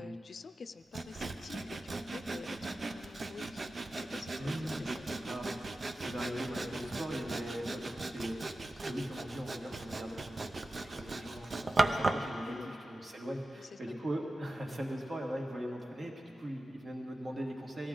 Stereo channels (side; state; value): both; normal; correlation 0.94